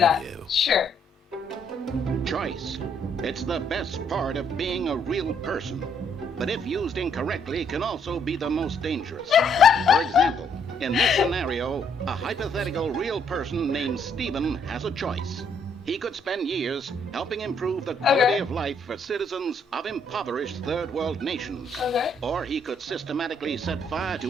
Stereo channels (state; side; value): normal; both; correlation 0.69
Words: video. Sure. choice. It's the best part of being a real person. But if used incorrectly, can also be the most dangerous. For example, in this scenario, a hypothetical real person named Stephen has a choice. He could spend years helping improve the quality of life for citizens of impoverished third world nations. Or he could systematically set fire